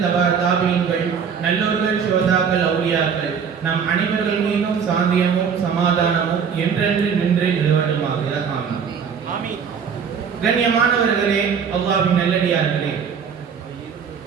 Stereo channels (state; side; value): quieter; left; 6.7 dB